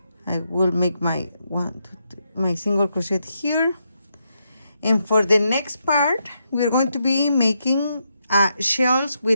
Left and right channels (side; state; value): both; inverted; correlation -0.81